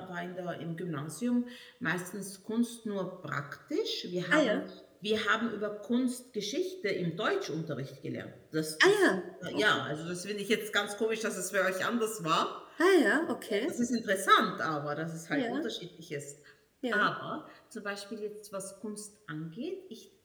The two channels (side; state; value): both; identical; correlation 1.00